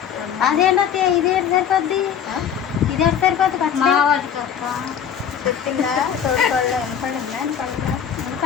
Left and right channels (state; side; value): quieter; right; 8.4 dB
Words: అదేంటో ఇదే సరిపోద్ది ఇదే సరిపోద్ది మా వాడికి చెప్పిందా తోడుకోళ్ళు వినపడిందా